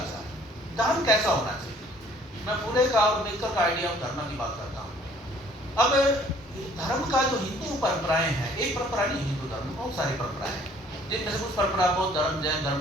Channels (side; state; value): both; normal; correlation 0.58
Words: धर्म कैसा होना चाहिए। मैं फुले का और अम्बेडकर का आइडिया ऑफ धर्म की बात करता हूँ। अब धर्म का जो हिंदू परंपराएं हैं, एक परंपरा नहीं, हिंदू धर्म में बहुत सारी परंपराएं हैं, जिनमें से कुछ परंपरा बौद्ध धर्म, जैन